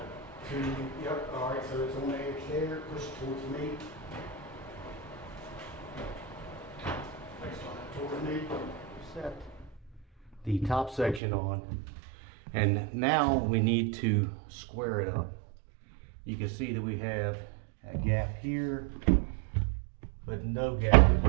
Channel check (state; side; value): drops out; left; at 11.2 s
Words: yep, all right, so it's on the edge there, push it towards me. Towards me. Set the top section on, and now we need to square it up. You can see that we have a gap here but no gap